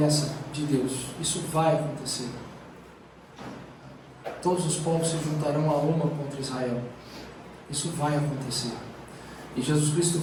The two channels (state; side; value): identical; both; correlation 1.00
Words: de Deus. Isso vai acontecer. Todos os povos se juntarão a uma contra Israel. Isso vai acontecer. E Jesus Cristo